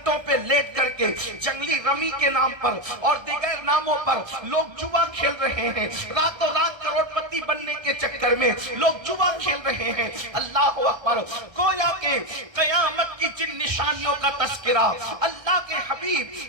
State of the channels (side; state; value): left; late; 1.3 ms